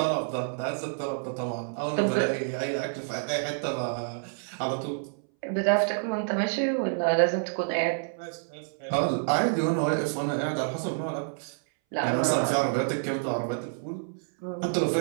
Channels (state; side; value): silent; left; 59 dB below the other